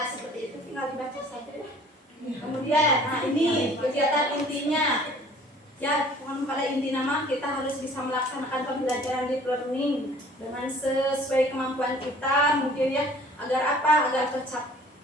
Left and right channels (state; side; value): normal; both; correlation 0.52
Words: seperti itu tinggal dibaca saja ya. Kemudian, nah ini kegiatan intinya. Ya, pada inti nama kita harus bisa melaksanakan pembelajaran deep learning dengan sesuai kemampuan kita, mungkin ya, agar